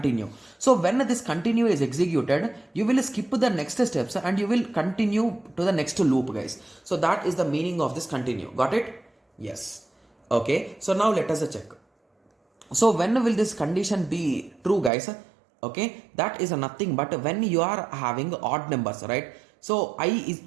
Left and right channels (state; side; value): drops out; left; at 14.9 s